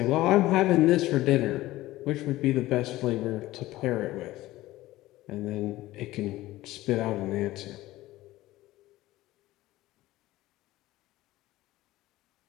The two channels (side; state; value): right; quieter; 16.9 dB